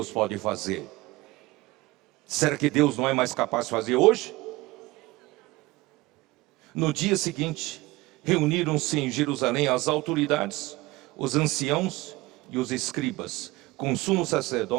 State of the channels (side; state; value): left; quieter; 20.5 dB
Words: pode fazer. Será que Deus não é mais capaz de fazer hoje? No dia seguinte, reuniram-se em Jerusalém as autoridades, os anciãos e os escribas, com o sumo